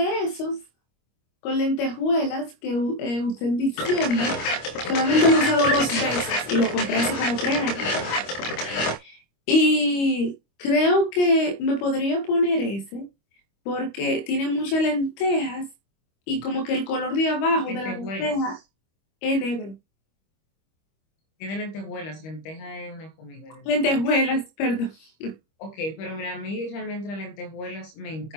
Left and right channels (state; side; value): late; right; 25 ms